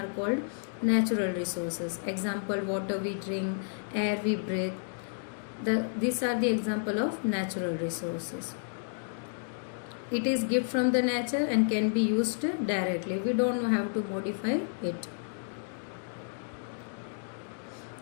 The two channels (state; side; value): silent; right; digital silence